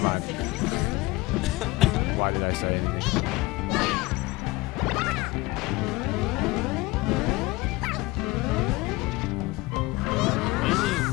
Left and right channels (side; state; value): right; quieter; 21.1 dB